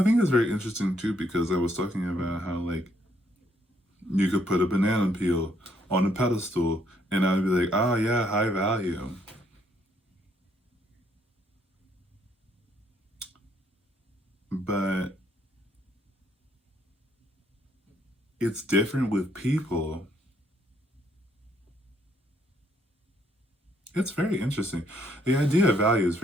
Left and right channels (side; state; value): both; normal; correlation 0.70